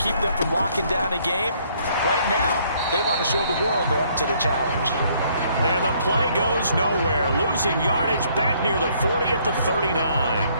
them from locking down a game. Right now, they want to show the world they're up to the challenge. And the play goes nowhere. Losing yardage back near the 40 at the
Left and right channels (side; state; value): both; inverted; correlation -0.65